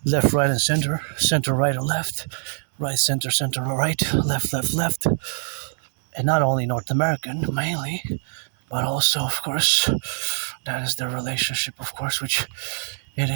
left, right, and center, right, and left, right, center, right, left, and not only North American mainly, but also, of course, that is the relationship, of course, which it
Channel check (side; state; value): left; silent; digital silence